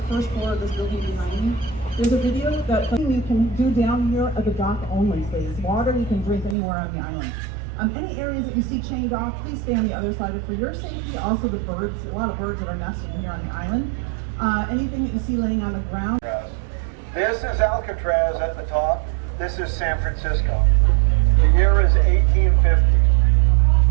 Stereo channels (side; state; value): left; drops out; at 6.6 s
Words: first floor of this building behind me. There's a video that you can do down here at the dock only, please. Water you can drink anywhere on the island. Any areas that you see chained off, please stay on the other side. For your safety, also the birds, a lot of birds that are nesting here on the island. Anything that you see laying on the ground. This is Alcatraz at the top. This is San Francisco. The year is 1850.